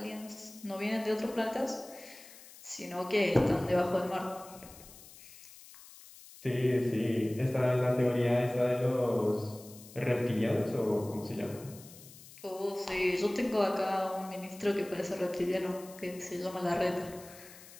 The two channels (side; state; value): left; noise; hiss, 19 dB below the sound